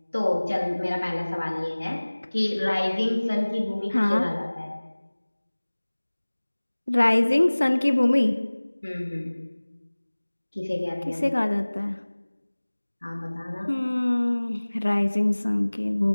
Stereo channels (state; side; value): inverted; both; correlation -1.00